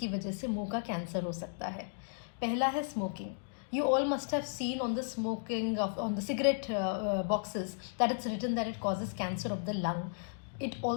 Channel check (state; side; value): silent; right; digital silence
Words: वजह से मुंह का कैंसर हो सकता है। पहला है smoking. You all must have seen on the on the cigarette boxes that it's written that it causes cancer of the lung. It